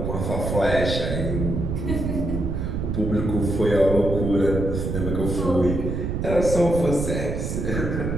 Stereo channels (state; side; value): noise; right; rumble, 2 dB below the sound